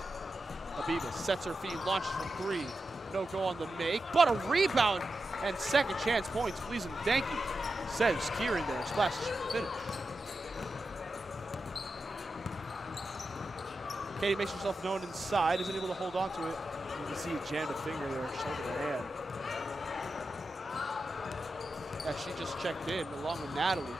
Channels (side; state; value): both; normal; correlation 0.90